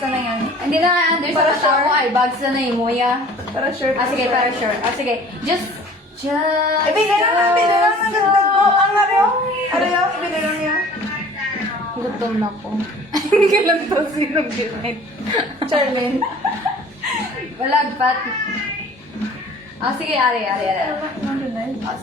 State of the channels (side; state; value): both; normal; correlation 0.48